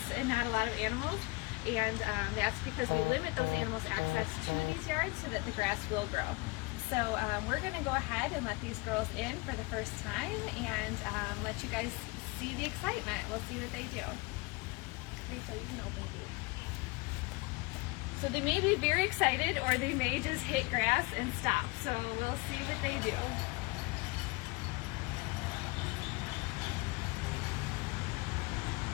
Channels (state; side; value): quieter; right; 25.3 dB